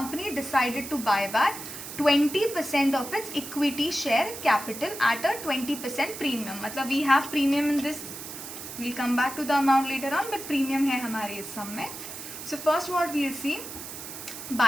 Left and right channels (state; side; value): noise; right; hiss, 10 dB below the sound